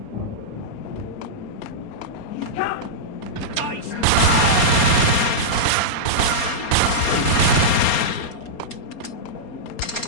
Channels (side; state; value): right; late; 4.3 ms